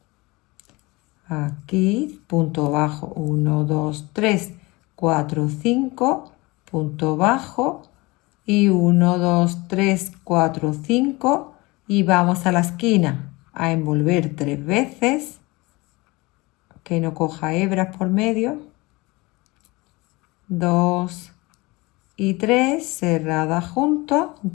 Aquí, punto bajo, 1, 2, 3, 4, 5, punto bajo y 1, 2, 3, 4, 5 y vamos a la esquina a envolver 3 veces, que no coja hebras por medio, 2 y 3 cerradas juntos,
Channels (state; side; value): quieter; right; 23.3 dB